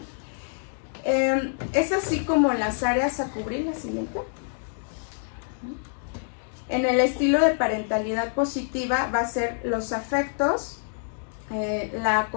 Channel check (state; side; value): silent; right; digital silence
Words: Es así como las áreas a cubrir. La siguiente. En el estilo de parentalidad positiva va a ser los afectos, la